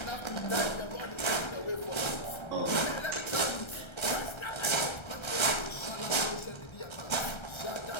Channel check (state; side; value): late; right; 1.3 ms